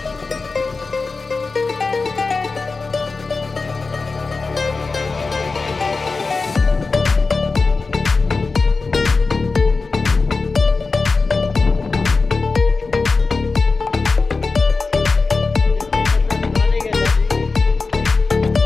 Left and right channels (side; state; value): right; quieter; 4.1 dB